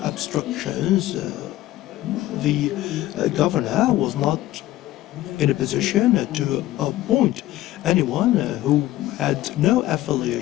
obstructions. The governor was not in a position to appoint anyone who had no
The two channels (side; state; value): right; quieter; 15.4 dB